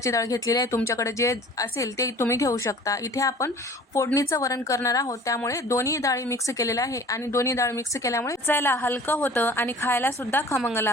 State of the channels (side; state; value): both; normal; correlation 0.46